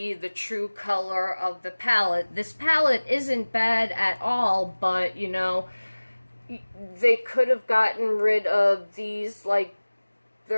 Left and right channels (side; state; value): both; inverted; correlation -1.00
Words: the true color of the palette. This palette isn't bad at all, but you know, they could have gotten rid of these, like,